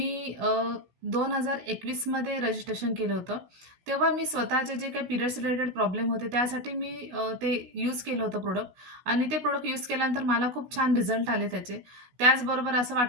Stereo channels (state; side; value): late; left; 16 ms